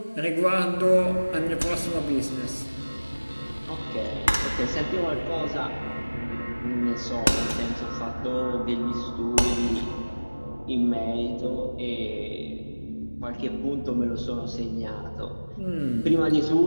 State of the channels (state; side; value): inverted; both; correlation -1.00